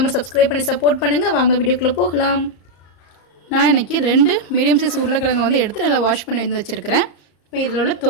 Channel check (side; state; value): right; late; 34 ms